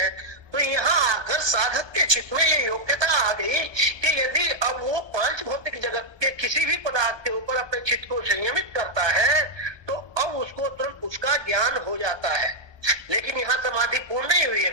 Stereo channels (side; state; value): left; late; 1.2 ms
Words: तो यहाँ आकर साधक के चित्त में ये योग्यता आ गई कि यदि अब वो पांच भौतिक जगत के किसी भी पदार्थ के ऊपर अपने चित्त को संयमित करता है, तो अब उसको तुरंत उसका ज्ञान हो जाता है। लेकिन यहाँ समाधि पूर्ण नहीं हुई है,